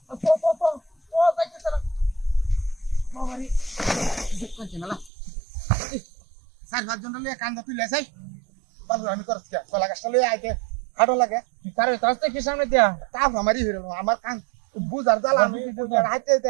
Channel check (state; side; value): drops out; left; at 5.1 s